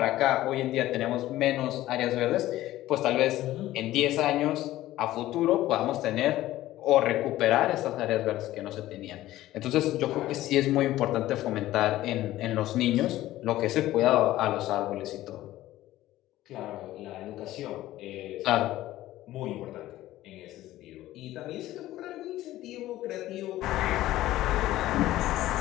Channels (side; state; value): right; quieter; 15.2 dB